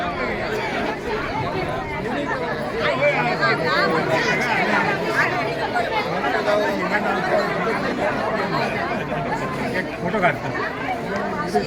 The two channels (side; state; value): both; identical; correlation 1.00